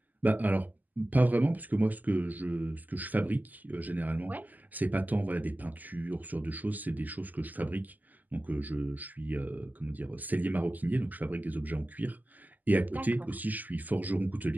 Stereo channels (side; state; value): left; late; 0.082 ms